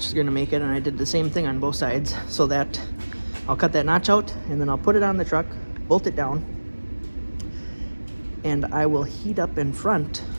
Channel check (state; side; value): inverted; both; correlation -1.00